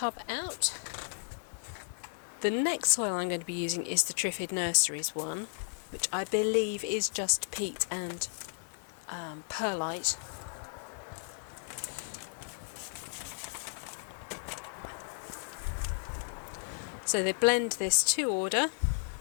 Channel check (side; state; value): right; silent; digital silence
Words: out. The next soil I'm going to be using is the Triffid Nurseries one, which I believe is just peat and perlite. So they blend this to order.